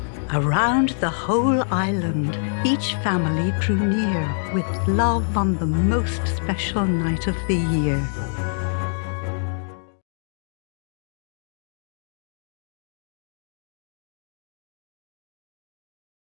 Around the whole island, each family drew near with love on the most special night of the year.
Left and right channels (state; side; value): silent; right; digital silence